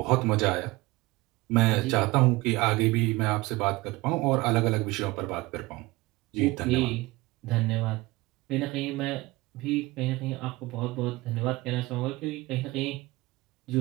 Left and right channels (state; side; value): quieter; left; 21.0 dB